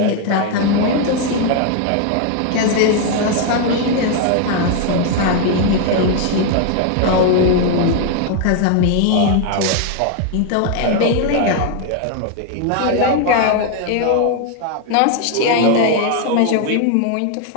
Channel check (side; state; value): both; different; correlation 0.00